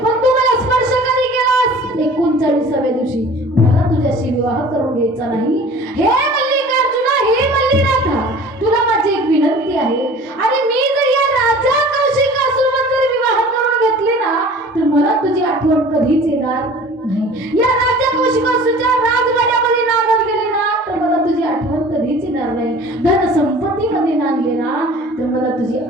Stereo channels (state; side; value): normal; both; correlation 0.45